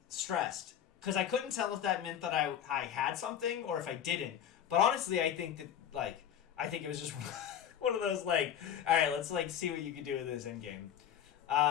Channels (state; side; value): quieter; right; 9.7 dB